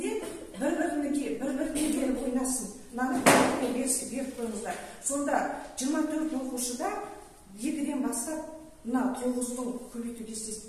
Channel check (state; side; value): identical; both; correlation 1.00